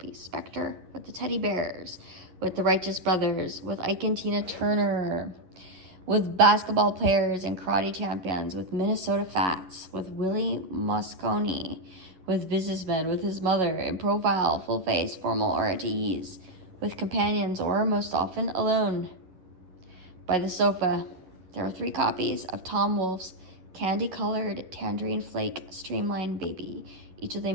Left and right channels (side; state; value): left; late; 11 ms